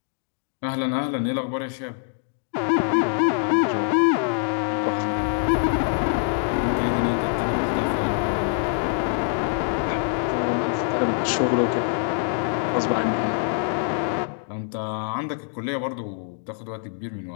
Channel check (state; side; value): silent; right; digital silence